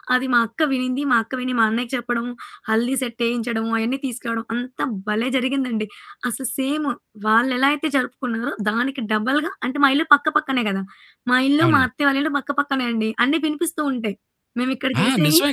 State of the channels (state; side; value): identical; both; correlation 1.00